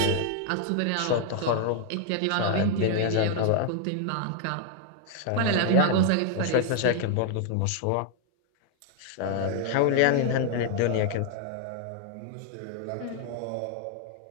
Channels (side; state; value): both; different; correlation 0.00